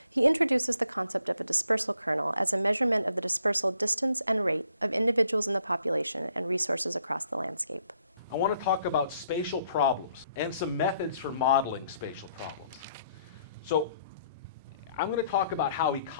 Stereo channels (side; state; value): both; inverted; correlation -0.68